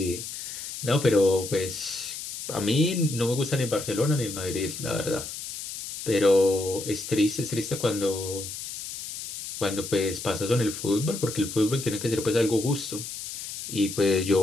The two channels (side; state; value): left; noise; hiss, 8 dB below the sound